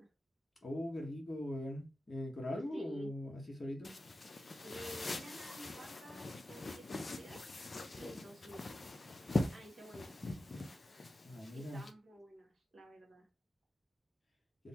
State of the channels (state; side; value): normal; both; correlation 0.92